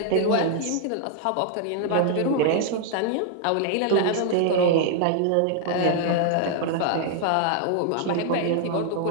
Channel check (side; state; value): both; different; correlation 0.00